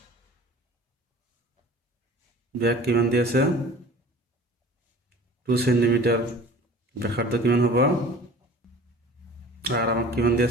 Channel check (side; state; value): both; normal; correlation 0.45